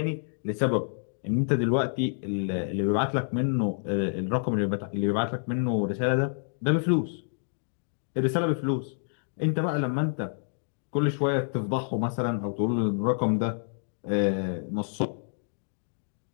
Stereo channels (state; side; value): silent; right; digital silence